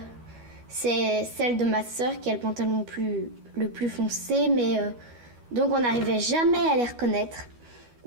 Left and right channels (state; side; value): late; left; 12 ms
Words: c'est celle de ma soeur qui a le pantalon le plus foncé, mais donc on n'arrivait jamais à les reconnaître.